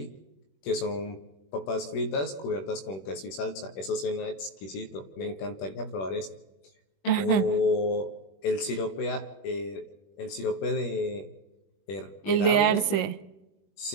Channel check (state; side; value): late; right; 21 ms